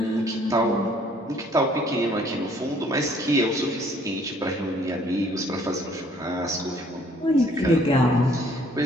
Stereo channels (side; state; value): both; normal; correlation 0.60